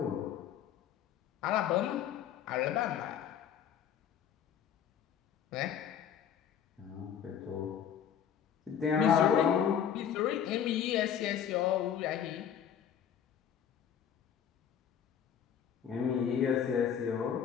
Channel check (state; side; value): quieter; right; 8.8 dB